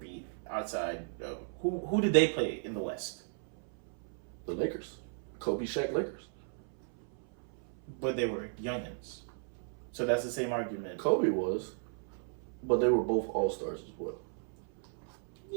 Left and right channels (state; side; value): silent; left; 54 dB below the other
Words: outside of... Who did they play in the West? The Lakers. Kobe, Shaq Lakers. But they were youngins. So that's the same argument. Kobe was, but they were both all-stars as well.